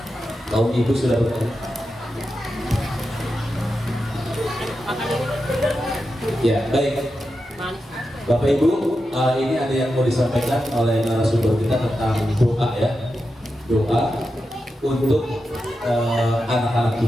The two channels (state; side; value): normal; both; correlation 0.89